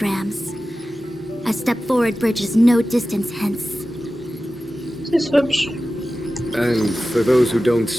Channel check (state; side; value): normal; both; correlation 0.95